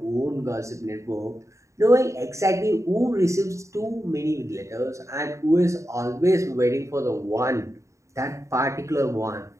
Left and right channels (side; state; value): left; late; 0.14 ms